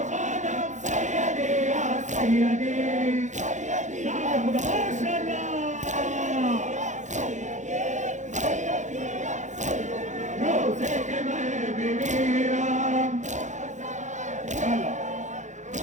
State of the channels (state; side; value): late; left; 0.35 ms